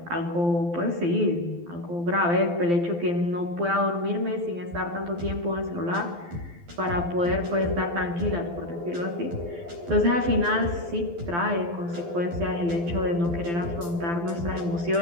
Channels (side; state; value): left; late; 12 ms